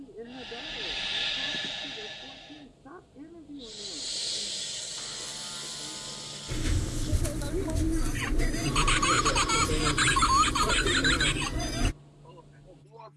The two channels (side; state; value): both; identical; correlation 1.00